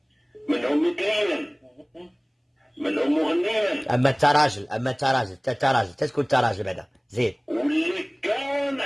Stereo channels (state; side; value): identical; both; correlation 1.00